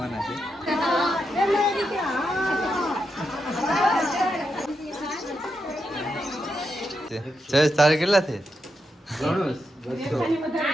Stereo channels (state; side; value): normal; both; correlation 0.85